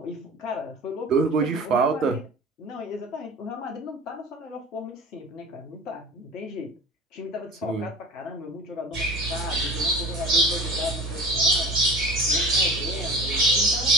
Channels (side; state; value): both; normal; correlation 0.38